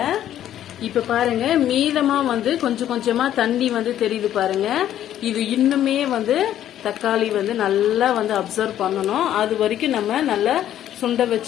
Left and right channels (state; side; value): quieter; right; 11.5 dB